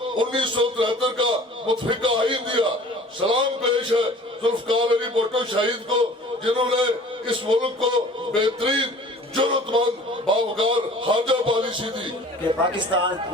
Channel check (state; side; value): normal; both; correlation 0.47